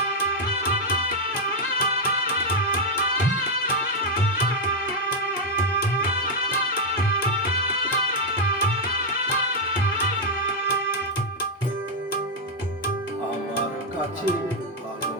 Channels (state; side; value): normal; both; correlation 0.01